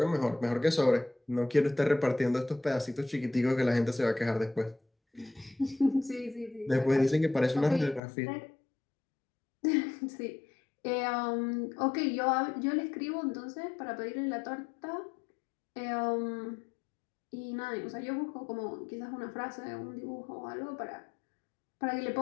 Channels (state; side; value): drops out; right; at 8.0 s